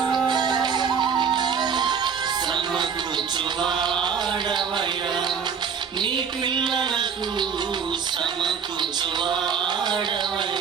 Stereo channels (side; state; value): left; quieter; 6.7 dB